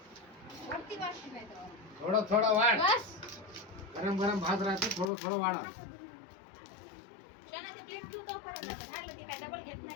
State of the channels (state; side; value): drops out; right; at 5.1 s